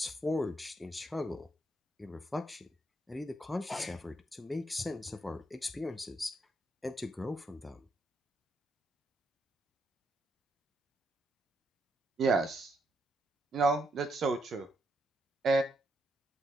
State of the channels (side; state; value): both; normal; correlation 0.78